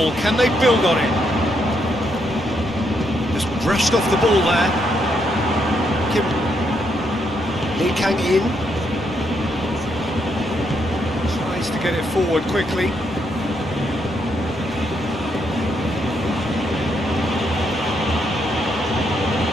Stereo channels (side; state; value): both; normal; correlation 0.77